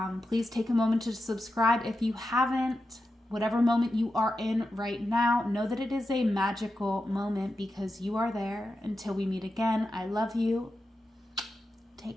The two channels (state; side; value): normal; both; correlation 0.90